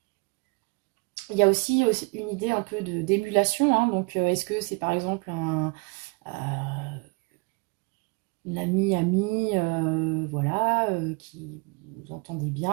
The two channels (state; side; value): quieter; left; 31.4 dB